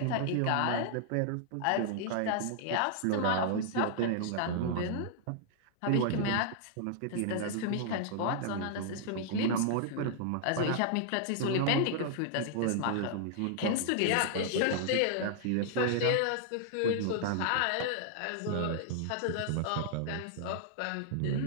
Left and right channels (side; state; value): both; different; correlation -0.01